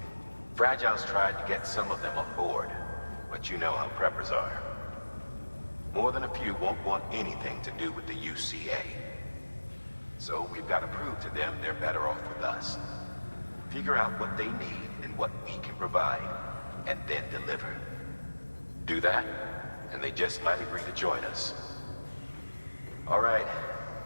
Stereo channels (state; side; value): inverted; both; correlation -1.00